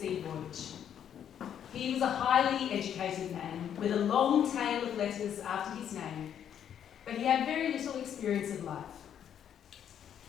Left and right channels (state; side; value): quieter; right; 9.2 dB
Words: voyage. He was a highly educated man with a long tail of letters after his name, but he had very little experience of life.